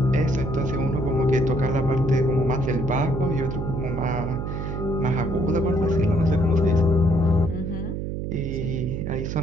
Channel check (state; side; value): noise; right; hum, 4 dB below the sound